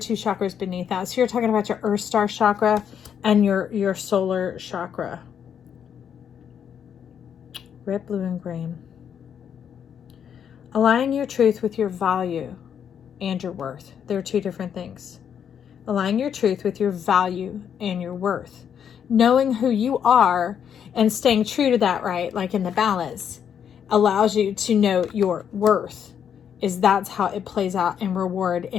chakras beneath that. So you're talking about your earth star chakra and your solar chakra. Red, blue, and green. Aligning your truth with your value and your worth. There are 2 different things. Aligning your truth with your value and your worth. Knowing who you are and staying true to that, right? Like in the balance, allows you to know your worth. That's how it plays out in reward,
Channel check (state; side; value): quieter; right; 8.3 dB